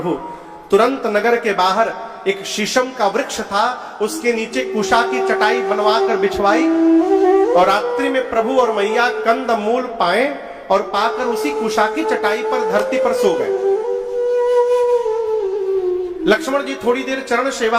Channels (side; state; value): both; identical; correlation 1.00